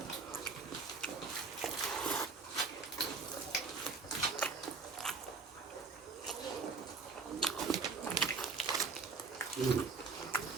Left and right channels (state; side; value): quieter; left; 4.6 dB